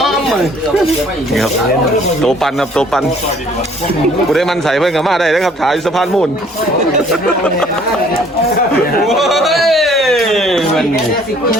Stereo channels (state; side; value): normal; both; correlation 0.58